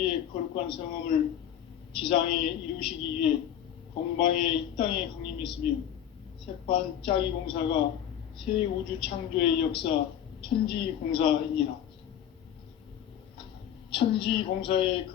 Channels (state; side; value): quieter; right; 10.1 dB